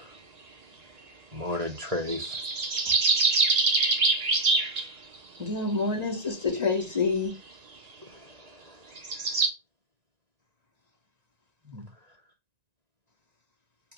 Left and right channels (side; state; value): left; late; 1.9 ms